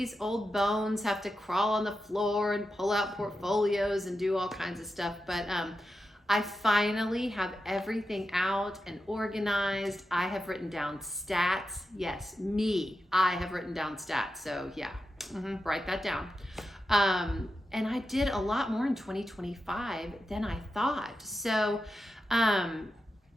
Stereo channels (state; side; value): normal; both; correlation 0.89